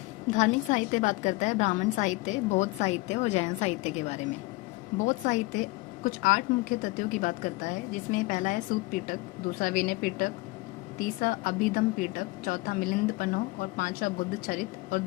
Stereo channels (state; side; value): quieter; right; 22.4 dB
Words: धार्मिक साहित्य बात करता है ब्राह्मण साहित्य, बौद्ध साहित्य और जैन साहित्य के बारे में। बौद्ध साहित्य कुछ 8 मुख्य तथ्यों की बात करता है, जिसमें पहला है सूत पीटक, दूसरा विनय पीटक, तीसरा अभिधम पीटक, चौथा मिलिंद पन्हो और पांचवा बुद्ध चरित और